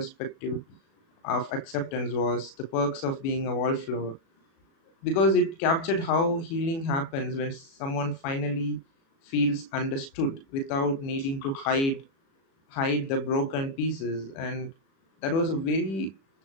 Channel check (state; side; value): late; right; 36 ms